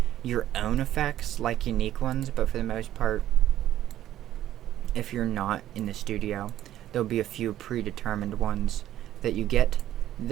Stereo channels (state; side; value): quieter; left; 12.6 dB